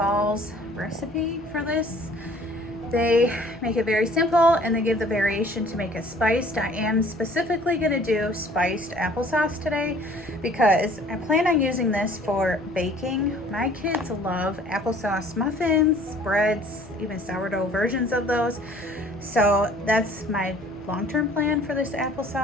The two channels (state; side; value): normal; both; correlation 0.53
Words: recipe for this. They make it very simple and they give the variation to make it spiced. I am specifically gonna do spiced applesauce today because I plan on using this for baking. My kids love applesauce muffins, breads, even sourdough versions of those. So that's my long-term plan for this